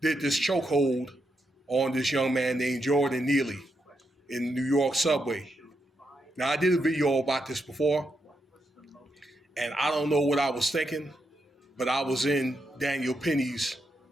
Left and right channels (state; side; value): normal; both; correlation 0.83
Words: this chokehold on this young man named Jordan Neely in the New York subway. Now, I did a video about this before, and I don't know what I was thinking, but I was in Daniel Penny's